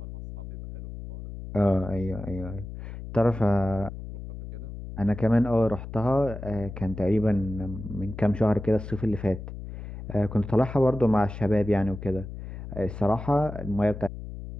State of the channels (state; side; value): noise; left; hum, 10 dB below the sound